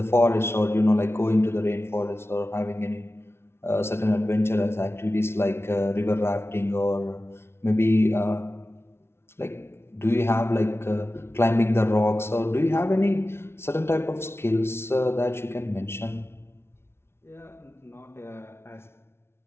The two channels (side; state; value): right; late; 0.12 ms